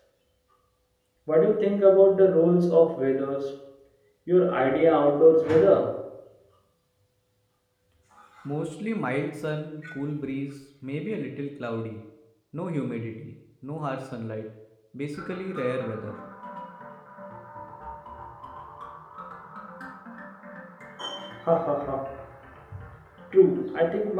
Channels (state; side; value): identical; both; correlation 1.00